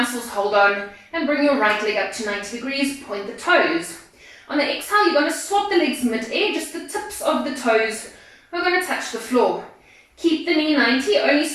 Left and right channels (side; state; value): both; identical; correlation 1.00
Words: hold on, and bring your right leg up to 90 degrees, point the toes. On the exhale, you're going to swap the legs mid-air, just the tips of the toes are going to touch the floor. Keep the knee 90, only